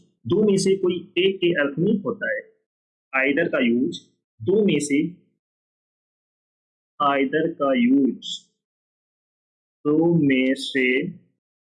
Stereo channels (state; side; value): identical; both; correlation 1.00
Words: दो में से कोई एक के अर्थ में होता है। आइदर का यूज दो में से, आइदर का यूज दो में से